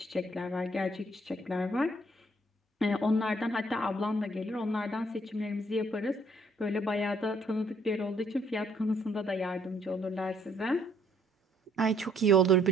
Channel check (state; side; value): normal; both; correlation 0.65